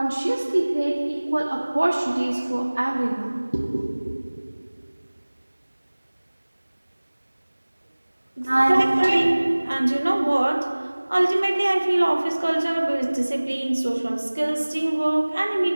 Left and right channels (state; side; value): inverted; both; correlation -1.00